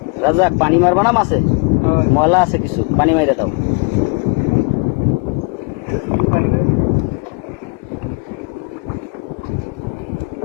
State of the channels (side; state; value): right; quieter; 32.7 dB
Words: রাজা, পানি মারবা না মাছে? ময়লা আছে কিছু, পানি মাইরে দাও।